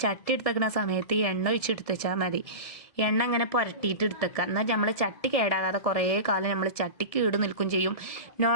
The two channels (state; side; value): late; right; 1.7 ms